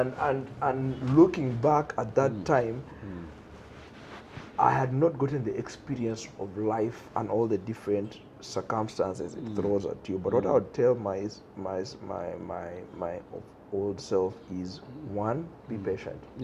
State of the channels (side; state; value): both; identical; correlation 1.00